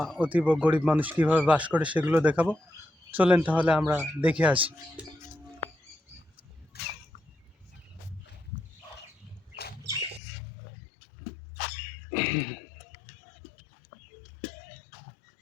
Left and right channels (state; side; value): drops out; right; at 10.2 s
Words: অতীব গরিব মানুষ কীভাবে বাস করে সেগুলো দেখাবো। চলেন তাহলে আমরা দেখে আসি।